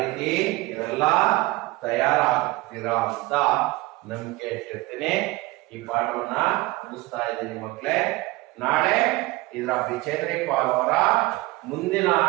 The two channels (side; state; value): left; quieter; 20.7 dB